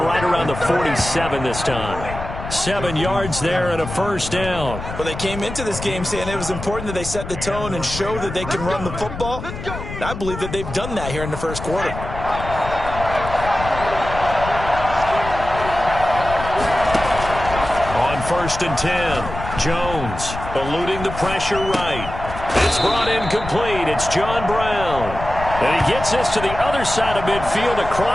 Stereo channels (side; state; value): left; noise; rumble, 9 dB below the sound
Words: right around the 47 this time. 7 yards there and a first down. Well, they came into this game saying it was important that they set the tone and show that they can run the football. I believe that they've done that here in the first quarter. On 1st and 10, Jones eluding the pressure right. It's brought in complete. It's John Brown. And he gets this to the other side of midfield